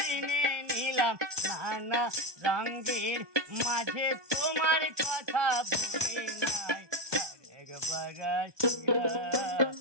নিলাম, নানা রঙের মাঝে তোমার কথা ভুলি নাই। আর একবার আসিয়া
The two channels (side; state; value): left; late; 1.2 ms